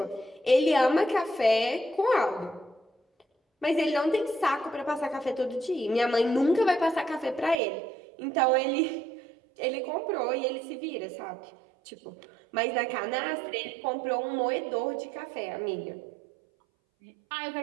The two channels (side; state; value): left; drops out; at 7.6 s